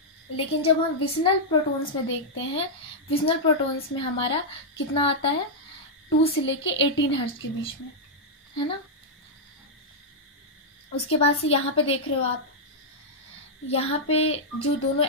लेकिन जब हम विसिनल प्रोटॉन्स में देखते हैं, विसिनल प्रोटॉन्स में हमारा कितना आता है 2 से लेके 18 हर्ट्ज के बीच में, है ना। उसके बाद से यहाँ पे देख रहे हो आप, यहाँ पे जो दोनों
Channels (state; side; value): normal; both; correlation -0.06